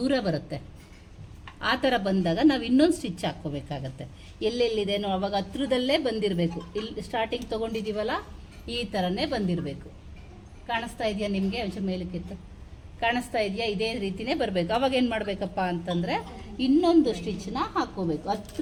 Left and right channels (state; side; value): identical; both; correlation 1.00